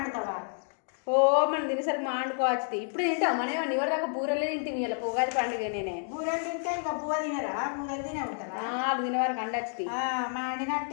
ఓ మనం తినేసరికి మాండుకోవచ్చు ఇప్పుడు తింటావు మనం ఏమన్నా ఎవరి దాకా బూరెలే తింటుంది ఇలా ఉగాది పండుగ నేనే బూరెలు తింటే ఇంకా బువ్వ తినరా బూరెలు తినే ఉంటారా వాళ్ళు తినే వారికి అండొచ్చి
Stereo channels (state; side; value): silent; right; 58 dB below the other